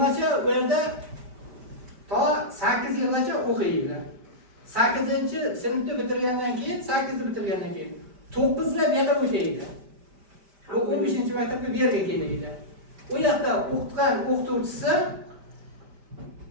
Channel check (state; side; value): late; left; 5.1 ms